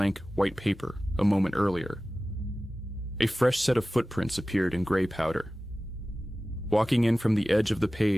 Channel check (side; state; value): both; normal; correlation 0.96